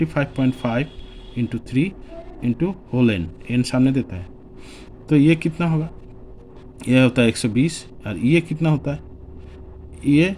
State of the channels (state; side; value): identical; both; correlation 1.00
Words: into 3 into whole n सामने देता है। तो ये कितना होगा? ये होता है 120 और ये कितना होता है? ये